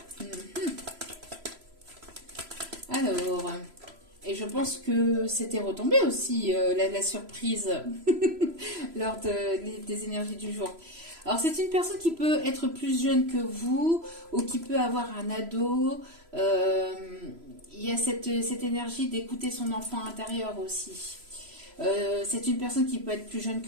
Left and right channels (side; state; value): left; late; 3.0 ms